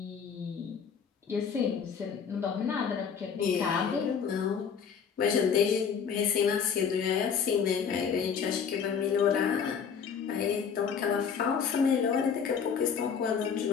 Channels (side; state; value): right; quieter; 6.8 dB